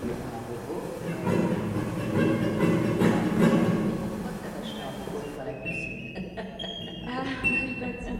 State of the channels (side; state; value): both; identical; correlation 1.00